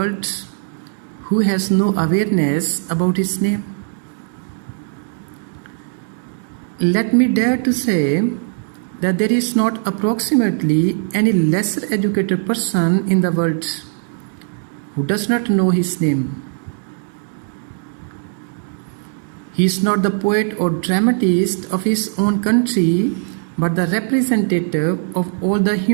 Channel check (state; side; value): silent; left; digital silence